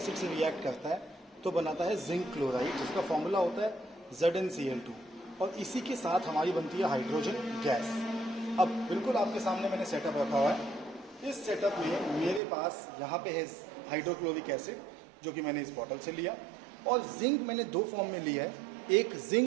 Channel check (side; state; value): left; drops out; at 12.4 s